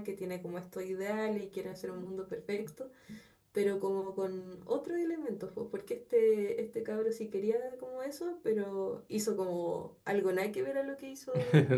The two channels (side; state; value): both; identical; correlation 1.00